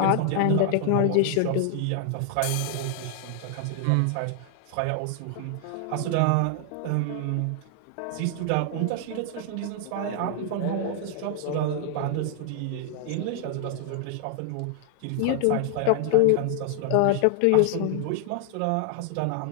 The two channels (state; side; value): different; both; correlation 0.00